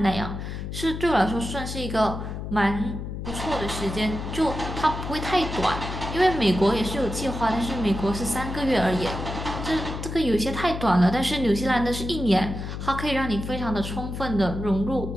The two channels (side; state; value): left; noise; hum, 6 dB below the sound